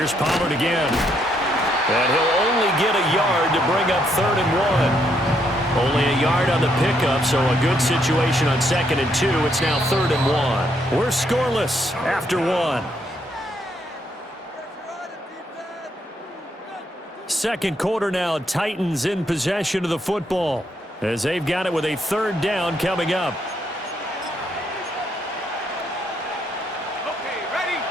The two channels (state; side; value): normal; both; correlation 0.74